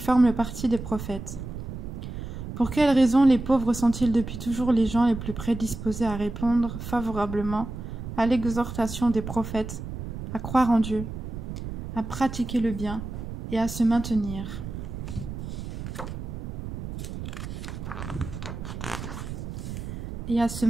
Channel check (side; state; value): right; noise; rumble, 7 dB below the sound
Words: le parti des prophètes. Pour quelle raison les pauvres sont-ils depuis toujours les gens les plus prédisposés à répondre favorablement à l'exhortation des prophètes, à croire en Dieu, à pratiquer le bien et à se maintenir